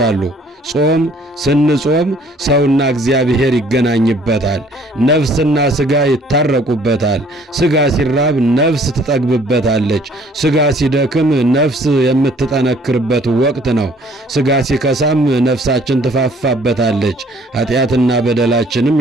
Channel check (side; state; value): both; normal; correlation 0.58